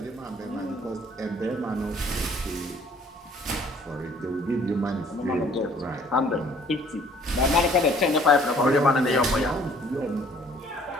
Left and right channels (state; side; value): normal; both; correlation 0.57